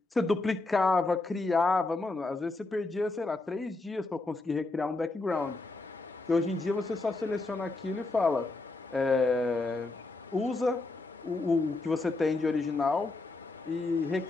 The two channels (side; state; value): right; quieter; 3.2 dB